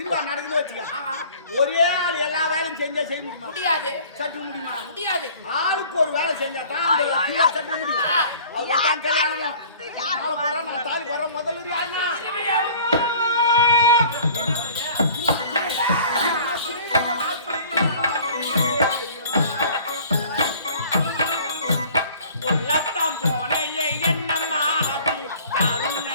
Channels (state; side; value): inverted; both; correlation -0.49